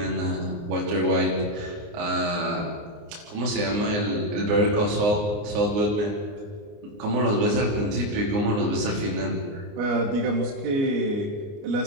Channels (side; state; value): left; late; 29 ms